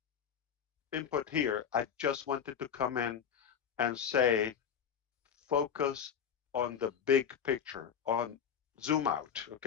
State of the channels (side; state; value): right; quieter; 7.9 dB